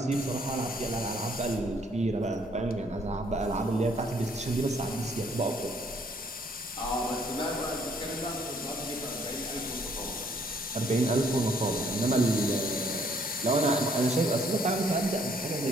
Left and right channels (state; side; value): normal; both; correlation 0.64